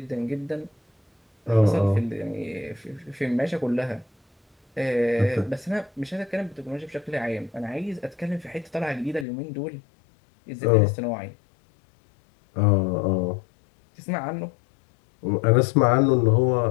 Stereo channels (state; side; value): drops out; right; at 9.2 s